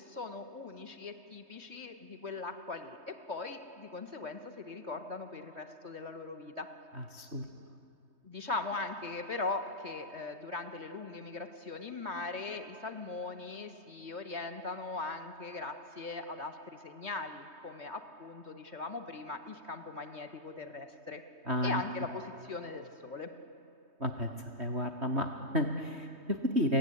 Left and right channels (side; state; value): left; late; 3.2 ms